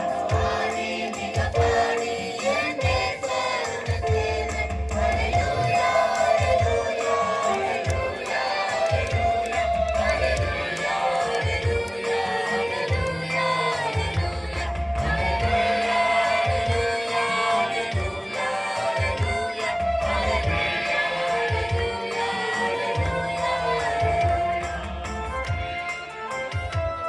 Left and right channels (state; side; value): identical; both; correlation 1.00